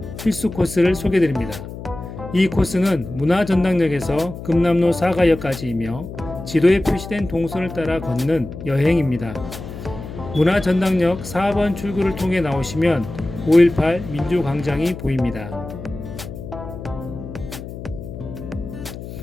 필수 코스를 소개드립니다. 이 코스는 문화전당역에서 금남로 사가역까지이며 지도에 표시된 동선을 따라 걷는 여행입니다. 문화전당역 4번 출구를 통해 나오시면 5.18 민주광장이 보입니다.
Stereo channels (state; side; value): noise; left; hum, 11 dB below the sound